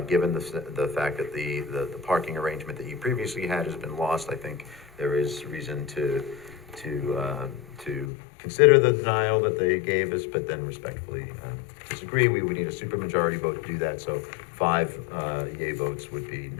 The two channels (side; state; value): right; drops out; at 8.1 s